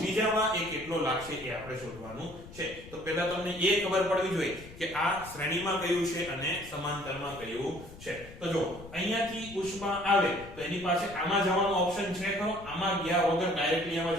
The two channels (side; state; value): left; noise; rumble, 17 dB below the sound